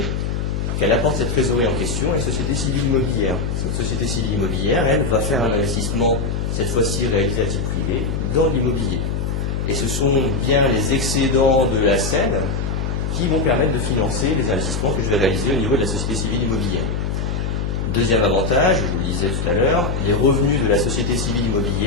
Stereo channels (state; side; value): noise; left; hum, 1 dB below the sound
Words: qu'elle apporte cette trésorerie en question à une société civile immobilière. Cette société civile immobilière, elle, va faire un investissement, cette fois-ci réalisé à titre privé, dans l'immobilier. Et ce sont bien les excédents de la selle qui vont permettre de financer les investissements que je vais réaliser au niveau de la société civile immobilière. Deuxième avantage, je vous le disais tout à l'heure, les revenus de la société civile